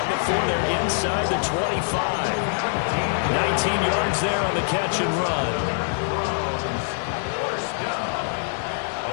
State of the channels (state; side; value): silent; right; 60 dB below the other